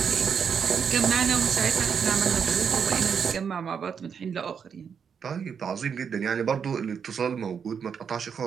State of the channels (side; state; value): left; quieter; 6.9 dB